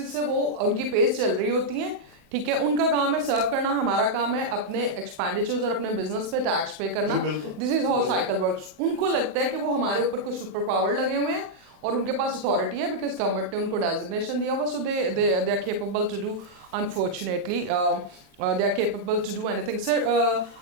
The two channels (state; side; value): late; left; 27 ms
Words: سے وہ ان کی پیز چل رہی ہوتی ہیں, ٹھیک ہے, ان کا کام ہے سرو کرنا, ہمارا کام ہے اپنے ایکسپینڈیچرز اور اپنے بزنس پہ ٹیکس پے کرنا. دس از ہاؤ سائیکل ورکس. ان کو لگتا ہے کہ وہ ہمارے اوپر کوئی سپر پاور لگے ہوئے ہیں اور ان کے پاس اتھارٹی ہے بیکاز گورنمنٹ نے ان کو ڈیزگنیشن دیا ہوا, so they are capable to do, unfortunately they are capable to do anything. Sir,